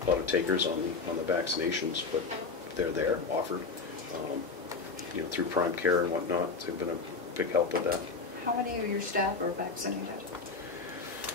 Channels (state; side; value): quieter; right; 4.4 dB